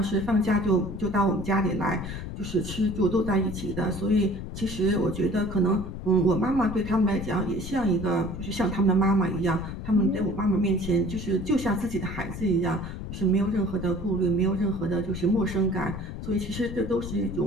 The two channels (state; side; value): noise; left; rumble, 8 dB below the sound